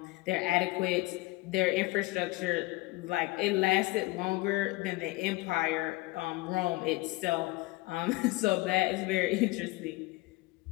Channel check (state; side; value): quieter; right; 21.2 dB